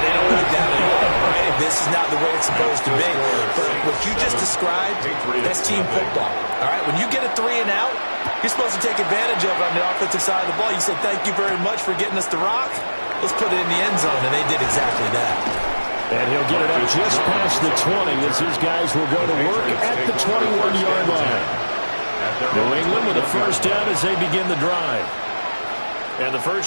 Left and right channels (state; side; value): inverted; both; correlation -1.00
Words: they don't like that at all, right? This is not the way it's supposed to be. But what you just described, that's team football, all right? When you get a 3 and out, you're supposed to take advantage of it on the offensive side of the ball. You say, thank you very much for getting us the rock. Let's put it in the end zone, and they did exactly that. And he'll get it up just past the 20 as his guys will go to work at the 21-yard line. New England with a first down as they begin the drive. And the